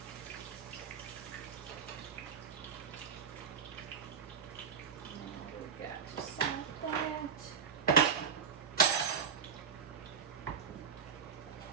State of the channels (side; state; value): left; quieter; 6.6 dB